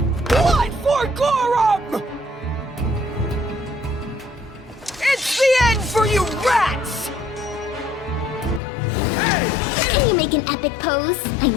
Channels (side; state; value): right; drops out; at 8.6 s